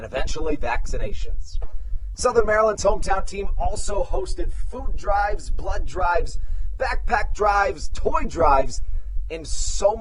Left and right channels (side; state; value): both; identical; correlation 1.00